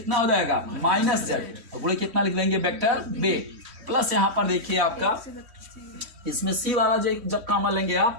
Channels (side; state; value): left; late; 3.1 ms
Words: हो जाएगा -z, तो गुणे कितना लिख लेंगे वेक्टर बी, प्लस यहाँ पर देखिए आपका इसमें सी वाला जब कॉमन लेंगे